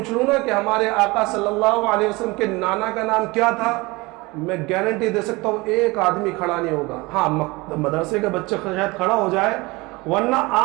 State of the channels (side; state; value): left; quieter; 23.4 dB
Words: لوں نا کہ ہمارے آقا صلی اللہ علیہ وسلم کے نانا کا نام کیا تھا، میں گارنٹی دے سکتا ہوں ایک آدمی کھڑا نہیں ہوگا۔ ہاں مدرسے کا بچہ شاید کھڑا ہو جائے، ورنہ